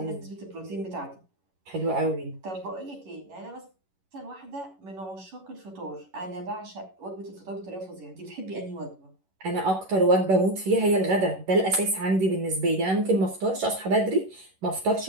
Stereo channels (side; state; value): left; late; 11 ms